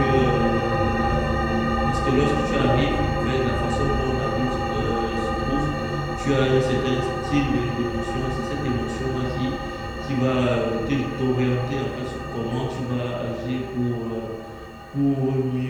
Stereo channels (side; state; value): both; identical; correlation 1.00